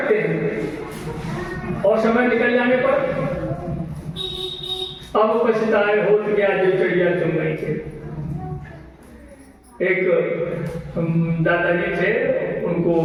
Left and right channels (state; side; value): identical; both; correlation 1.00